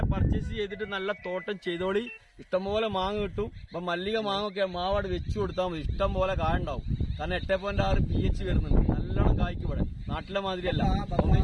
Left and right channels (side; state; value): both; identical; correlation 1.00